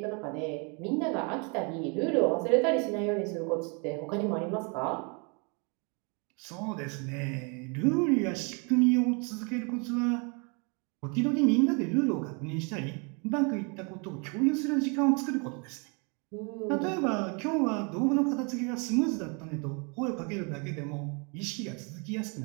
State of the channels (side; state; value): left; quieter; 33.9 dB